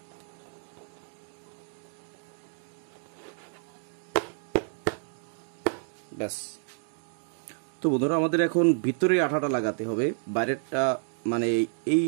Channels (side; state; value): left; silent; digital silence